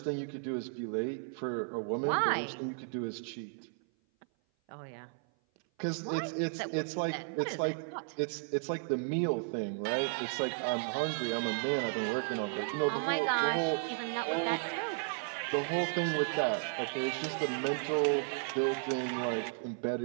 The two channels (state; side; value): silent; left; 55 dB below the other